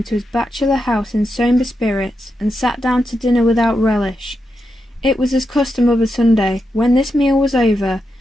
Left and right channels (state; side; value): normal; both; correlation 0.86